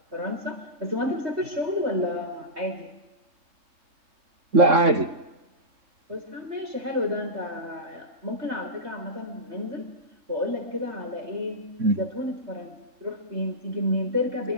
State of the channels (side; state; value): left; late; 3.6 ms